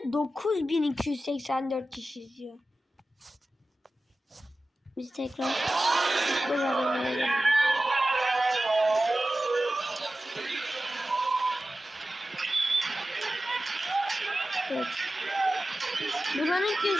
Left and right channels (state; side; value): normal; both; correlation 0.95